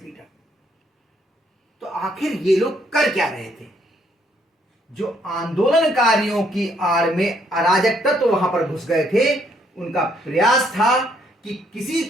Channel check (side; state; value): both; normal; correlation 0.69